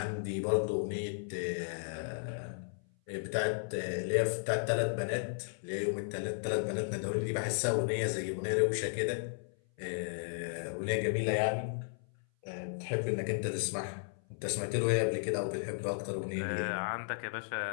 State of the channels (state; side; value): silent; right; 55 dB below the other